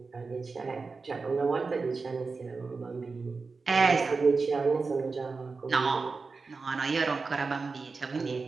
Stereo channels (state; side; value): quieter; left; 4.3 dB